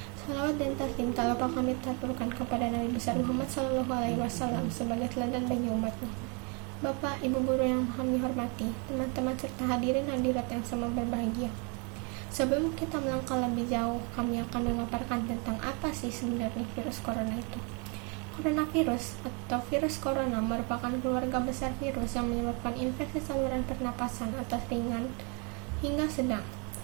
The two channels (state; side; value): quieter; left; 34.5 dB